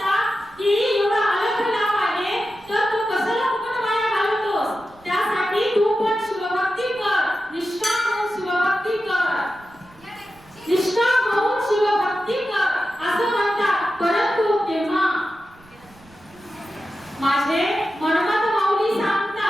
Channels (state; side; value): noise; right; rumble, 27 dB below the sound